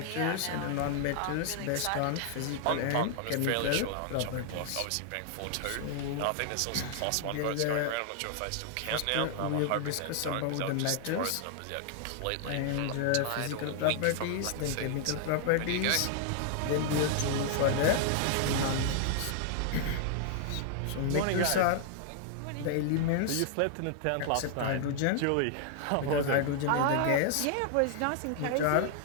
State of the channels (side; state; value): both; different; correlation 0.00